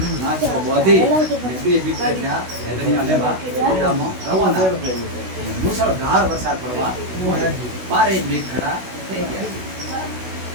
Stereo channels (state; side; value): late; left; 16 ms